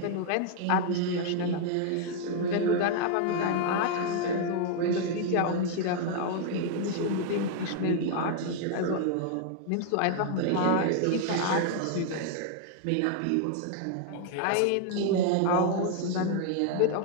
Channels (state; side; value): different; both; correlation 0.00